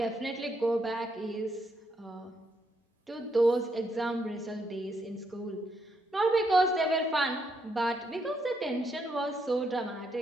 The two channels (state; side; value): normal; both; correlation 0.77